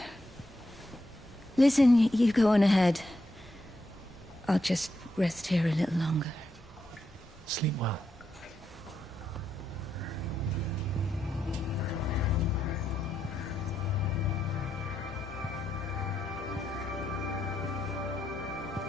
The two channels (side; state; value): both; normal; correlation 0.82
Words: Listen, you go on ahead. I'll just rest here a little longer. Sleep well.